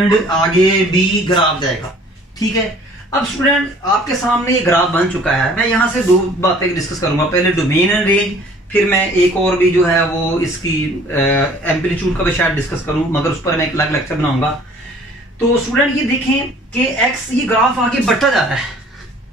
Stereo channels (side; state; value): both; normal; correlation 0.53